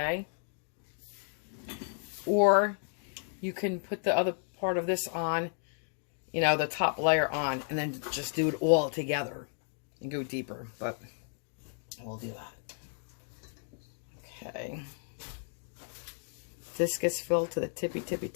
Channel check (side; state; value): right; silent; 56 dB below the other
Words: Or you can put the other part of this on, you know, the top layer on, and then just do it all together. And go deeper, but we'll do that. Okay. This gets filled to the tippy, tippy,